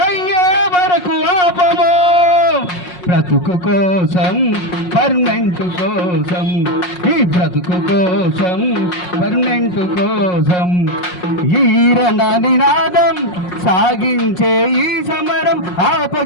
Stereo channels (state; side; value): late; right; 5.5 ms